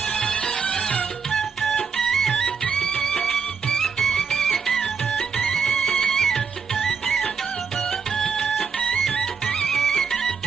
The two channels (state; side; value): quieter; left; 5.9 dB